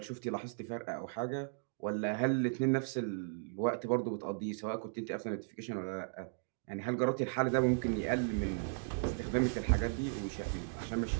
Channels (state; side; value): silent; left; digital silence